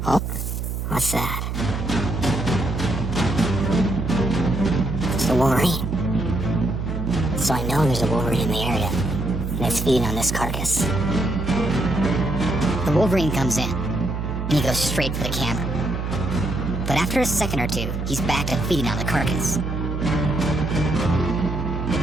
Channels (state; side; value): noise; right; hum, 3 dB below the sound